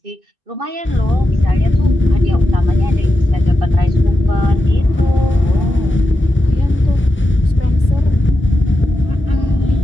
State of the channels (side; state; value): both; normal; correlation 0.89